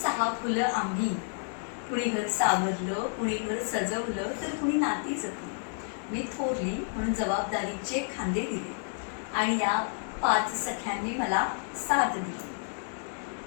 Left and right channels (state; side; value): silent; right; 57 dB below the other